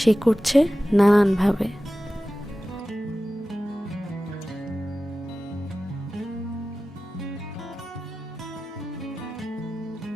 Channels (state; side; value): normal; both; correlation 0.95